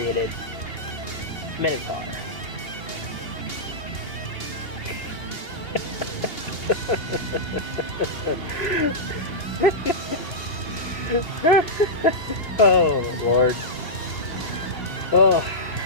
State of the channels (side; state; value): right; late; 2.8 ms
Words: Minotaur. Oh, Lord. Oh,